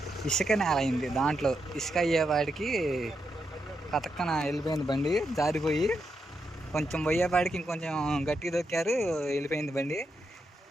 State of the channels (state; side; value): normal; both; correlation 0.84